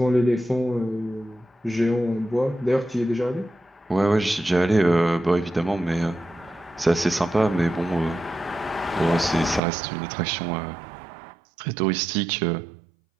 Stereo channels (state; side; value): drops out; left; at 9.6 s